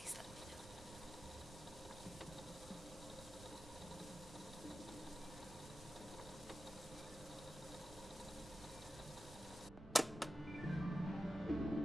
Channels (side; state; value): right; noise; rumble, 14 dB below the sound